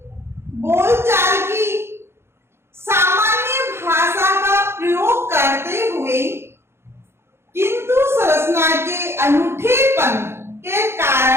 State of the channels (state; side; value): late; left; 0.12 ms